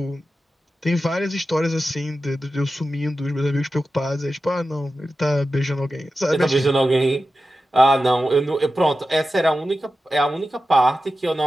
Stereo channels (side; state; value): both; normal; correlation 0.93